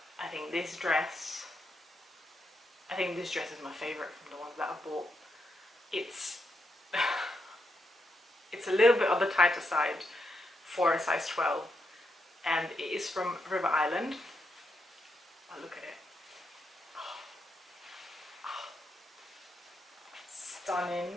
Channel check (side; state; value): both; normal; correlation 0.82